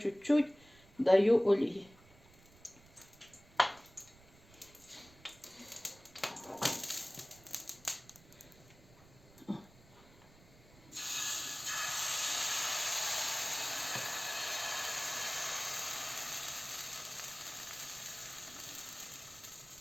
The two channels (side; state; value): right; noise; rumble, 25 dB below the sound